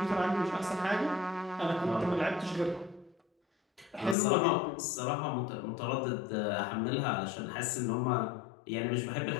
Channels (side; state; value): right; drops out; at 4.2 s